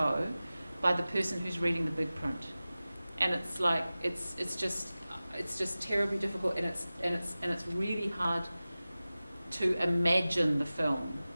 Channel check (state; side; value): inverted; both; correlation -0.97